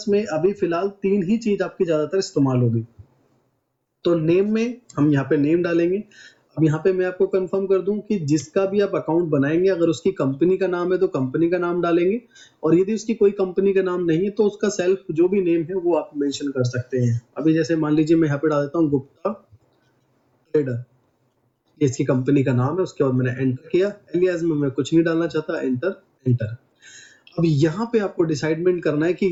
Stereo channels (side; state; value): both; identical; correlation 1.00